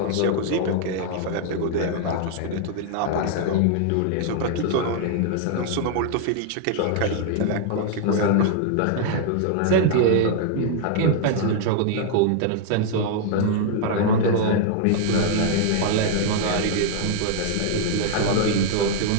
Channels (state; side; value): different; both; correlation -0.01